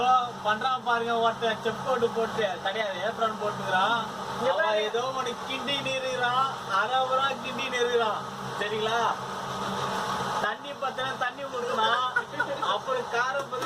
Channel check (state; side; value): identical; both; correlation 1.00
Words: பண்றான் பாருங்க, ஒருத்தர் செப் கோட்டு போட்டு கிடையாது ஏப்ரான் போட்டுக்கிறான். ஏதோ ஒண்ணு கிண்டி நிறுகிறான், அரைவரா கிண்டி நிறுகிறான். சரிங்களா? தண்ணி பத்தின தண்ணி ஊற்றலாம், அப்புறம் காரம்